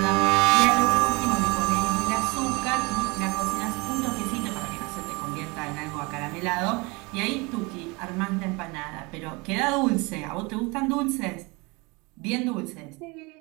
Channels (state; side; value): quieter; left; 26.7 dB